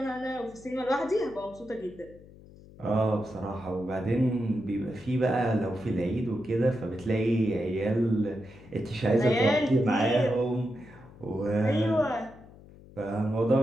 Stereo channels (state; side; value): noise; left; hum, 21 dB below the sound